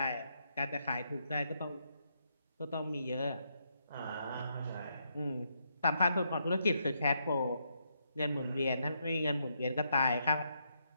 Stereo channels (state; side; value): inverted; both; correlation -0.78